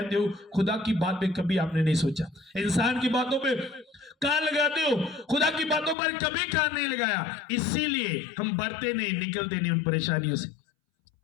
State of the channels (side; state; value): right; drops out; at 6.0 s